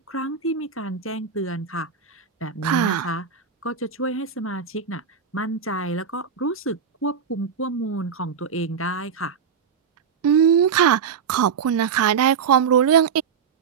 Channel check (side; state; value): left; quieter; 6.7 dB